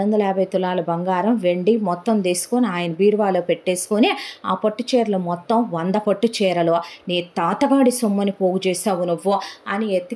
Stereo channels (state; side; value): identical; both; correlation 1.00